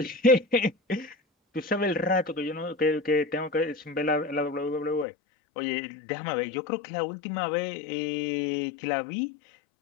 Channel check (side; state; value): right; drops out; at 5.1 s